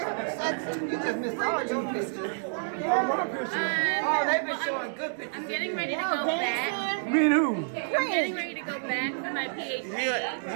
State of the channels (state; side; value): silent; left; 59 dB below the other